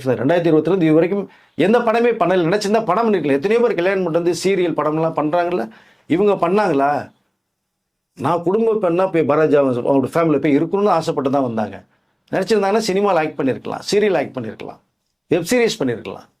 தான். 2022 இது வரைக்கும் எந்த படமே பண்ணல. நினச்சிருந்தா படம் பண்ணிருக்கல. எத்தனையோ பேர் கல்யாணம் பண்ணிட்டு வந்து சீரியல் படம்லாம் பண்ணுறாங்கல்ல. இவங்க பண்ணாங்களா? நான் குடும்ப பெண்ணா போய் பாரதிஜா அவங்களோட ஃபேமிலியில் போய் இருக்கணும்னு ஆசைப்பட்டு தான் வந்தாங்க. நினச்சிருந்தாங்கன்னா சினிமாவில் ஆக்ட் பண்ணியிருக்கலாம், சீரியல் ஆக்ட் பண்ணியிருக்கலாம், வெப் சீரிஸ் பண்ணியிருக்கலாம்.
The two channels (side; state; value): both; identical; correlation 1.00